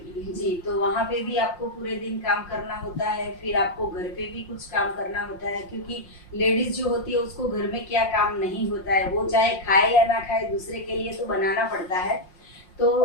की। जी। तो वहाँ पे भी आपको पूरे दिन काम करना होता है, फिर आपको घर पे भी कुछ काम करना होता है, क्योंकि लेडीज जो होती है उसको घर में क्या काम नहीं होता है, वो चाहे खाए या ना खाए दूसरे के लिए तो बनाना पड़ता है। तो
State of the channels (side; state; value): right; late; 5.6 ms